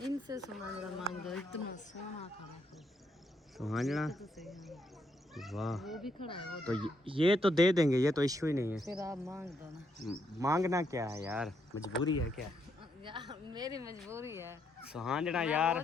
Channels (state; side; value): normal; both; correlation 0.75